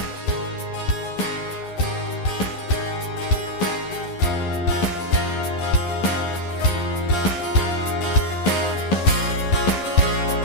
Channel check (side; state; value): right; late; 11 ms